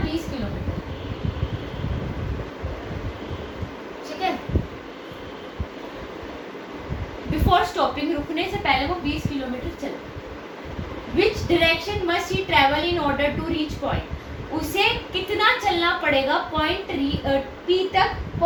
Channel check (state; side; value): identical; both; correlation 1.00